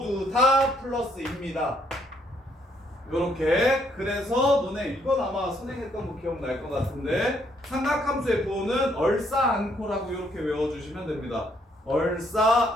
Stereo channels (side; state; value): both; normal; correlation 0.70